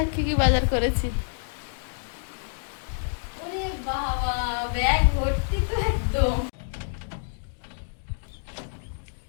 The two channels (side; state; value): right; silent; digital silence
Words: কি কি বাজার করেছি। ওরে বাবা, ব্যাগ ভর্তি তো একদম।